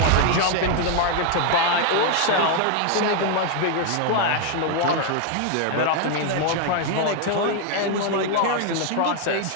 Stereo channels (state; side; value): different; both; correlation 0.01